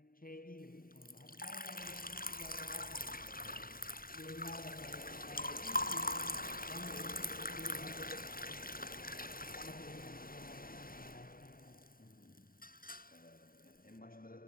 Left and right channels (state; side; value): late; right; 0.42 ms